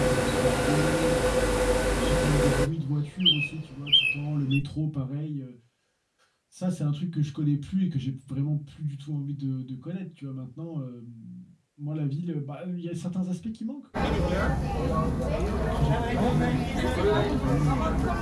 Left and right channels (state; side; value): identical; both; correlation 1.00